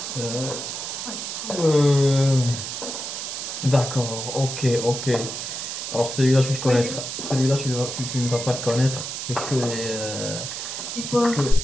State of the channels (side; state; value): right; noise; hiss, 6 dB below the sound